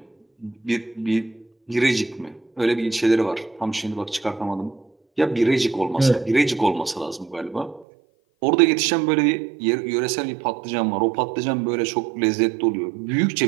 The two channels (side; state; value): left; drops out; at 7.9 s